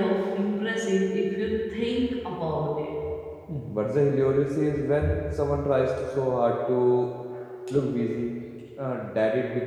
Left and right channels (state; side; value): identical; both; correlation 1.00